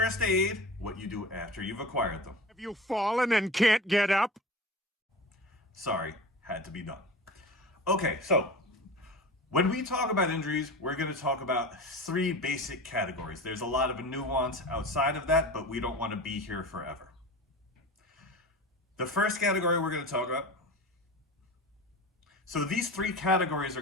aid, what you do after you've acquired them. Have you fallen and can't get up? Sorry, had to be done. Okay, so when we talk about injuries, we're going to talk about three basic categories. There's a lot of nuance outside of that, but we don't want to be here forever. The first category we're going to talk about. So these three categories are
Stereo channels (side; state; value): both; normal; correlation 0.33